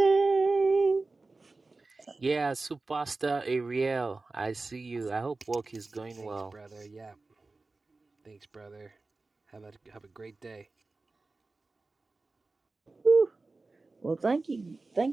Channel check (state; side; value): quieter; left; 3.5 dB